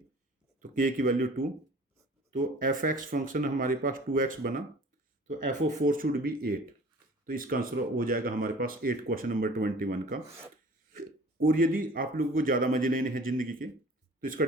तो के की वैल्यू 2, तो एफ एक्स फंक्शन हमारे पास 2x बना, तो एफ ओ 4 शुड बी 8, तो इसका आंसर हो जाएगा हमारे पास 8 क्वेश्चन नंबर 21 का। और यदि आप लोगों को ज़्यादा मजे लेने हैं जिंदगी के, तो इसका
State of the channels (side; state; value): both; normal; correlation 0.46